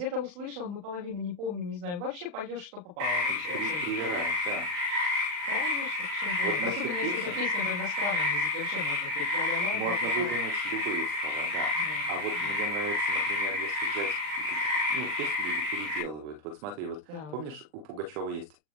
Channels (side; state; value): left; late; 40 ms